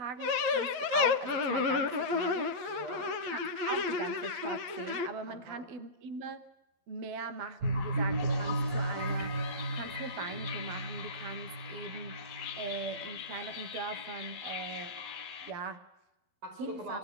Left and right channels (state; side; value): late; left; 12 ms